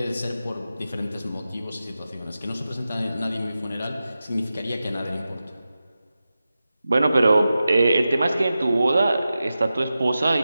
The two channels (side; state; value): both; inverted; correlation -0.92